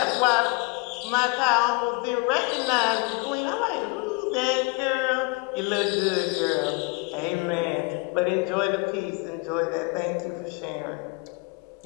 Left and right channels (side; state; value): right; quieter; 28.4 dB